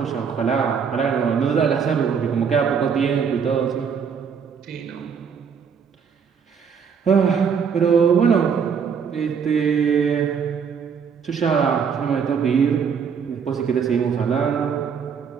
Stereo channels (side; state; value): left; quieter; 6.6 dB